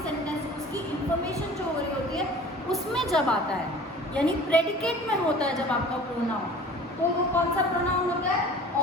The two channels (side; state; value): both; normal; correlation 0.44